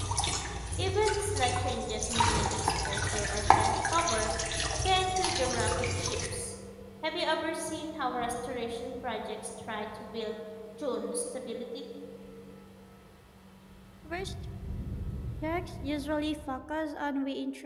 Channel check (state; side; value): identical; both; correlation 1.00